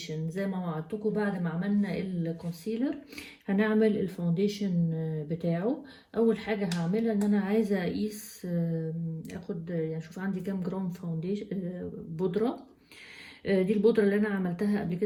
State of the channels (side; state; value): both; identical; correlation 1.00